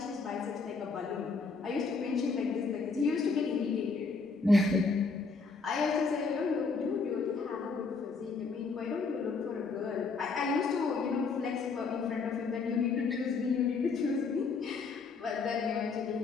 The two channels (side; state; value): right; quieter; 4.5 dB